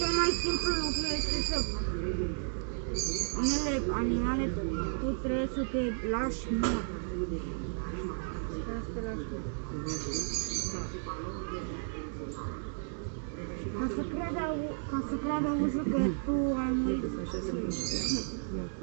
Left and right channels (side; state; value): left; silent; digital silence